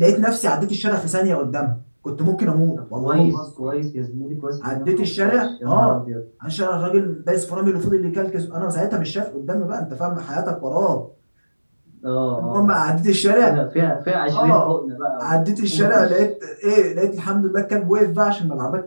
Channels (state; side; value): inverted; both; correlation -1.00